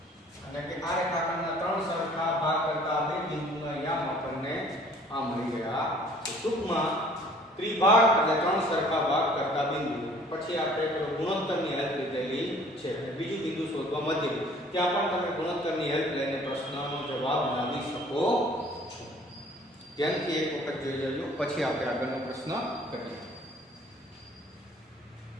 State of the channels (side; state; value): both; normal; correlation 0.54